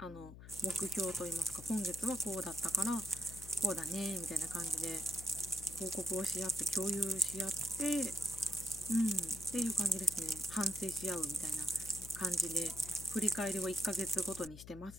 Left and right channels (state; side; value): noise; left; hum, 15 dB below the sound